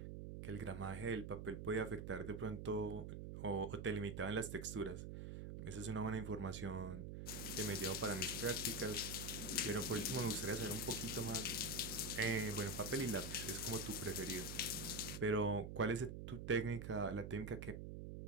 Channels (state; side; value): noise; right; hum, 7 dB below the sound